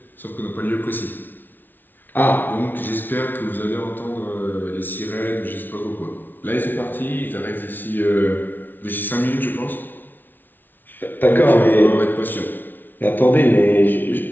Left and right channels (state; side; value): late; right; 0.091 ms